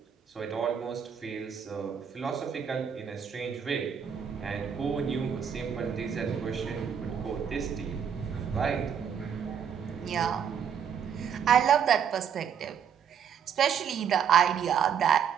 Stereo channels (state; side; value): quieter; left; 7.8 dB